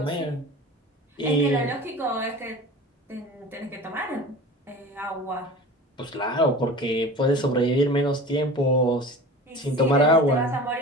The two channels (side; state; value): both; normal; correlation 0.36